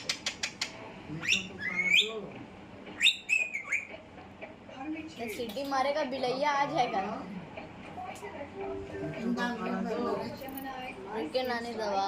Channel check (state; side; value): identical; both; correlation 1.00